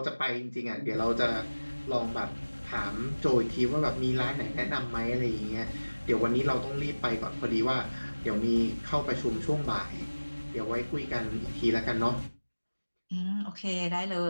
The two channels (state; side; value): inverted; both; correlation -1.00